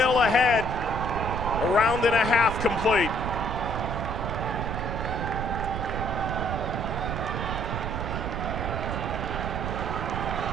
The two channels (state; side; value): noise; right; rumble, 3 dB below the sound